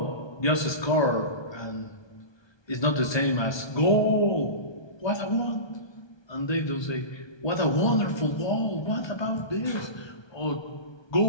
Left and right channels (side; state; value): right; late; 1.2 ms